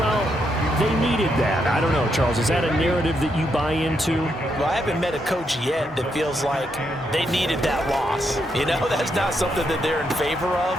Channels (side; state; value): both; normal; correlation 0.79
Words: they needed that. I don't know, Charles. Is that a narrative that you buy into? Well, I haven't met a coach yet that feels like they needed that loss. That's not something that they're in favor